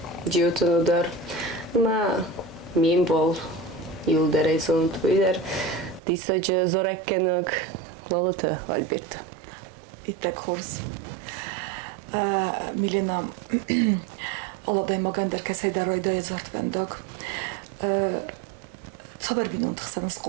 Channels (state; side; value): drops out; left; at 6.0 s